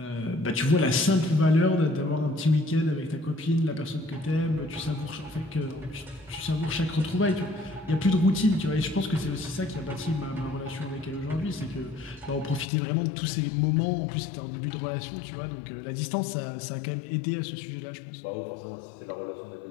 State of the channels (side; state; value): right; drops out; at 12.7 s